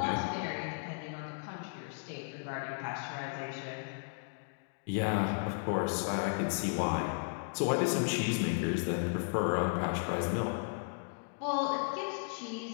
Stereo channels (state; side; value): silent; right; digital silence